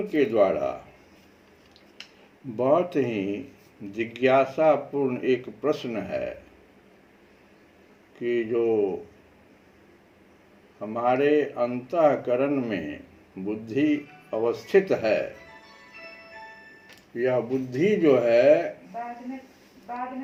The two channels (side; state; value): both; identical; correlation 1.00